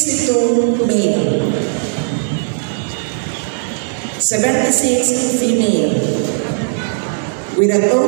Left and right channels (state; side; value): silent; left; digital silence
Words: male, 76 female, with a